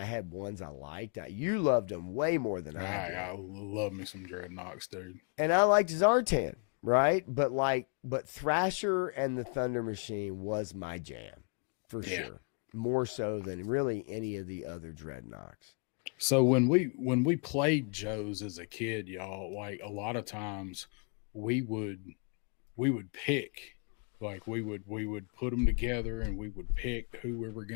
had ones I liked. You loved them way more than I did. I love me some Dreadnoughts, dude. And I liked Zartan. right? But Thrasher and the Thunder Machine was my jam for Yeah. sure, more so than really any of the other Dreadnoks. So when we played Joe's as a kid, y'all, like a lot of times we would pick, like we would put them together and we would pick who we were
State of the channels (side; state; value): right; quieter; 39.8 dB